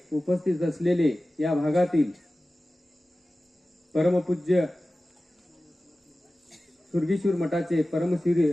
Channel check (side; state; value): both; normal; correlation 0.96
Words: उपस्थित असलेले या भागातील परमपूज्य सुरगेश्वर मठाचे